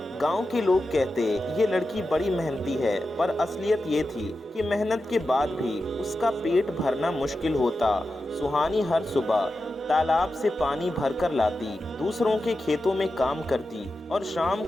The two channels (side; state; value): both; normal; correlation 0.91